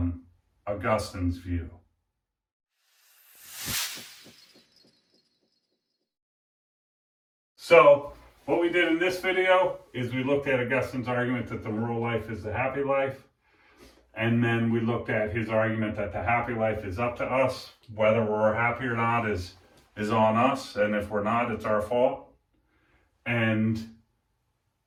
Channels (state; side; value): identical; both; correlation 1.00